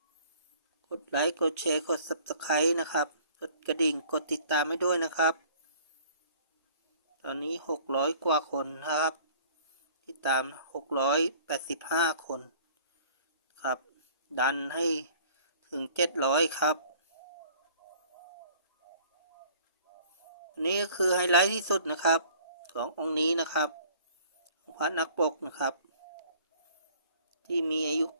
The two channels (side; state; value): both; inverted; correlation -0.53